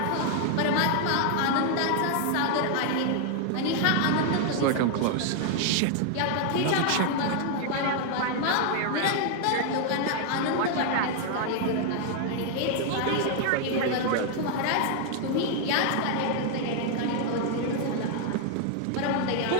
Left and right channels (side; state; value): both; different; correlation 0.00